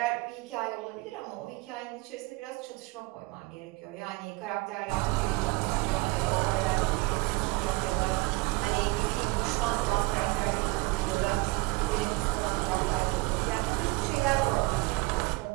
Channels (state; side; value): quieter; left; 23.8 dB